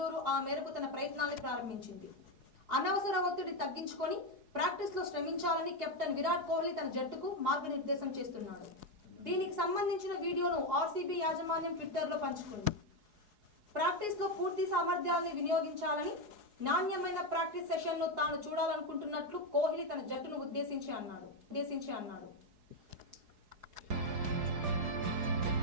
ఆ మేరకు తన ప్రయత్నాన్ని ప్రారంభించింది. అనవసర ఒత్తిడి తగ్గించుకొని ప్రాక్టీస్ లో శ్రమించాలని కెప్టెన్ విరాట్ కోహ్లీ తన జట్టుకు మార్గనిర్దేశం చేస్తున్నాడు. దీనికి సంబంధించిన వీడియోను ఆర్సీబీ యాజమాన్యం ట్విట్టర్ లో పంచుకుంది. ప్రాక్టీస్ లో పూర్తి సామర్థ్యాన్ని వినియోగించాలని, నాణ్యమైన ప్రాక్టీస్ సెషన్ను తాను చూడాలనుకుంటున్నట్లు కోహ్లీ తన జట్టును ఉద్దేశించి అన్నాడు.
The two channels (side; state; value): left; late; 4.8 ms